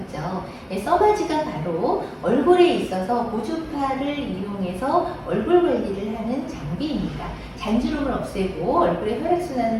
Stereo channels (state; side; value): identical; both; correlation 1.00